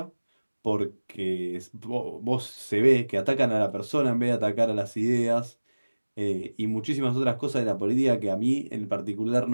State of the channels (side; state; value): both; inverted; correlation -1.00